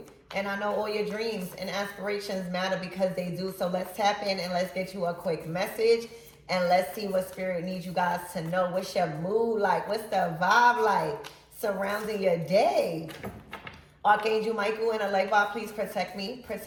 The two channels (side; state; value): both; identical; correlation 1.00